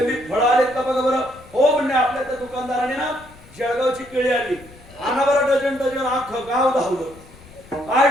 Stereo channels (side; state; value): left; noise; rumble, 23 dB below the sound